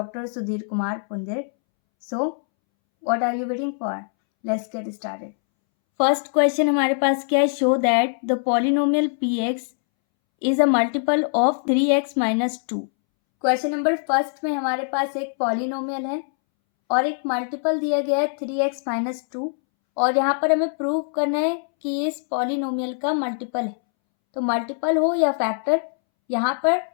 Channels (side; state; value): right; silent; 64 dB below the other